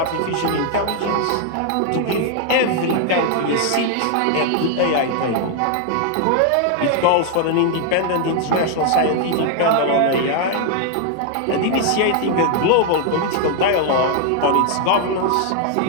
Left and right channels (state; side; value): different; both; correlation 0.00